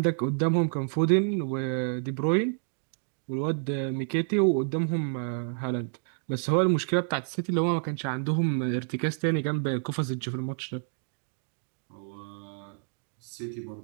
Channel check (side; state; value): left; silent; digital silence